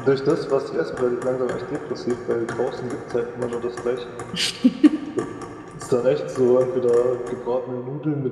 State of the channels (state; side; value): identical; both; correlation 1.00